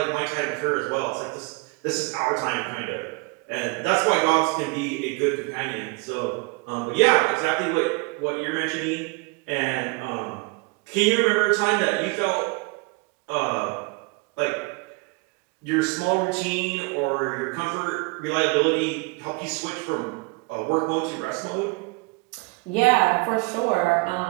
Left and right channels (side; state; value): left; quieter; 28.1 dB